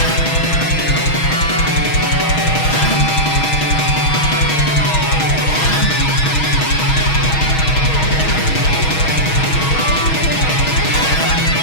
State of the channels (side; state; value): right; late; 6.3 ms